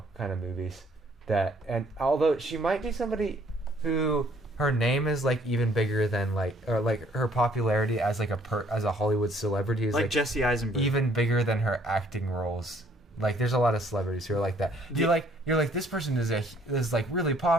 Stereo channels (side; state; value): both; normal; correlation 0.62